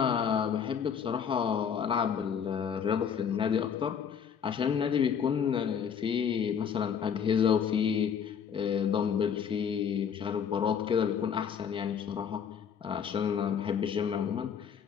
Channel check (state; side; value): quieter; right; 7.5 dB